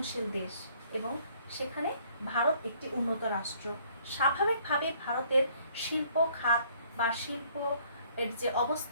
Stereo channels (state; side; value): inverted; both; correlation -0.61